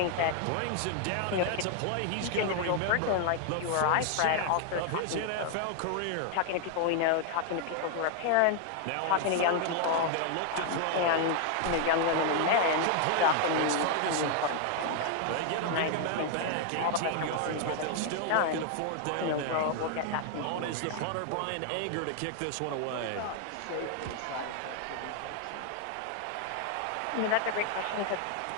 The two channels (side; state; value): both; different; correlation 0.00